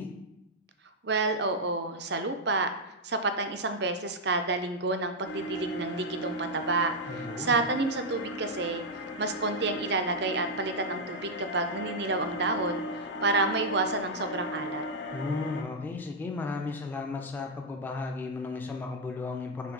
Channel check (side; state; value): both; normal; correlation -0.02